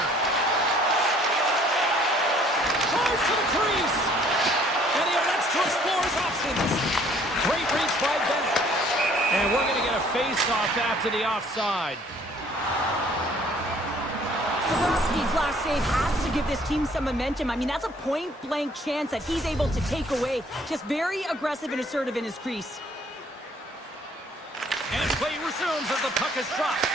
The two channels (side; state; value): both; normal; correlation 0.59